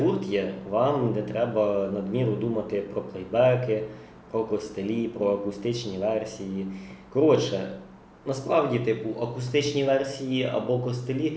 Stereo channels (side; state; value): both; identical; correlation 1.00